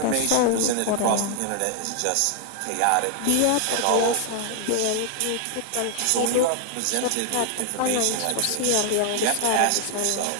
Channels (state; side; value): different; both; correlation 0.00